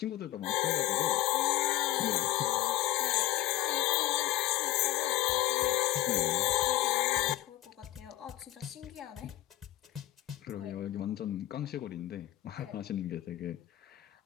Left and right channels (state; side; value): quieter; right; 15.6 dB